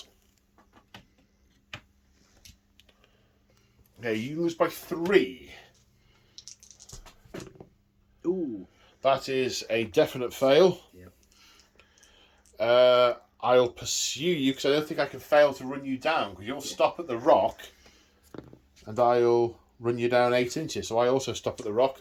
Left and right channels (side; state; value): both; identical; correlation 1.00